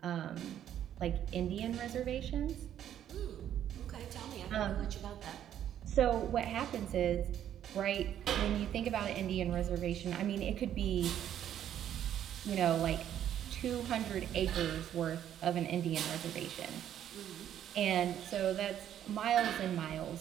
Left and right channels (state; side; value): quieter; left; 10.6 dB